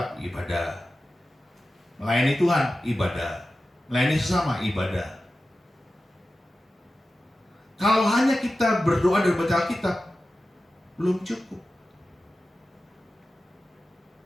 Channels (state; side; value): normal; both; correlation 0.94